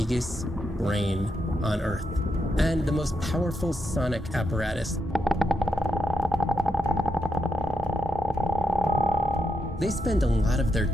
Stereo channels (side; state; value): both; normal; correlation 0.83